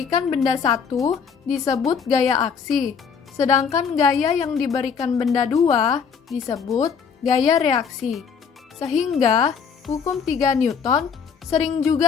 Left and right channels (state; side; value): quieter; right; 6.4 dB